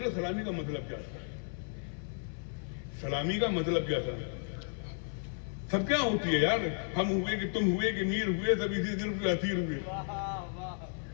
لو, سلامی کا مطلب کیا تھا؟ سلامی کا مطلب کیا تھا؟ سب کیا ہوتی ہے یار, ہم ہوئے کہ تم ہوئے کہ میر ہوئے, سب اسی دن کے اسیر ہوئے.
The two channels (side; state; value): right; silent; 55 dB below the other